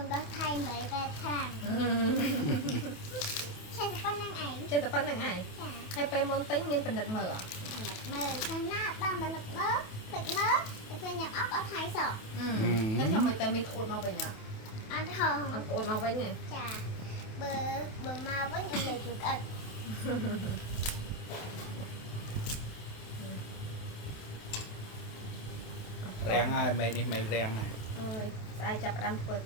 ដល់ថៃ8 8ខាងចេះតែប៉ុណ្្នឹងឯងហើយពេលមុនទិញមានបណ្ឌិតមើលខាងណាបានបណ្ឌិតមើលទឹកមើលតែពេលញ៉ាំអត់អត់ថៃសោះតែថាមិនតែមីក្អួតមកវិញអត់ហងអត់ក្អួតមកវិញទេចាបើមកវិញអីលេខក្អិត rèn ai mày này mày rèn này អើយស្អែកចាប់ផ្ដើមធ្វើ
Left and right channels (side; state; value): right; late; 28 ms